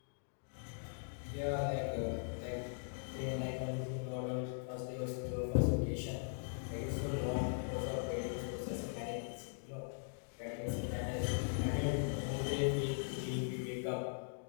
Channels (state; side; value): silent; right; digital silence